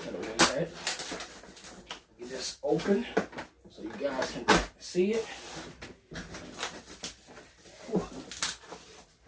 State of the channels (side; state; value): both; identical; correlation 1.00